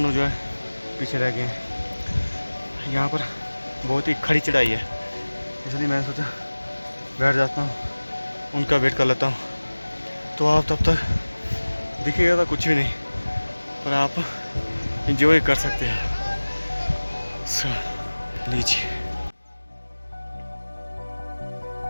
जो है पीछे रह गए हैं। यहाँ पर बहुत ही खड़ी चढ़ाई है, इसलिए मैंने सोचा बैठ जाता हूँ, उनका वेट कर लेता हूँ। तो आप तब तक दिखेगा तो कुछ भी नहीं, पर आप इंजॉय कर सकते हैं। लीजिए।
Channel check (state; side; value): inverted; both; correlation -1.00